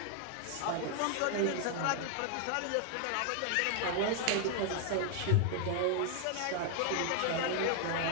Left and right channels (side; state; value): both; different; correlation 0.00